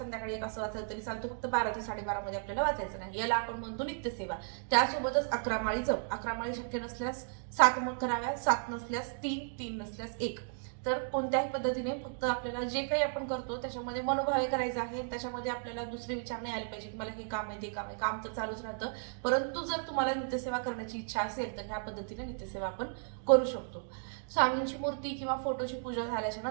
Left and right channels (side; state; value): left; silent; digital silence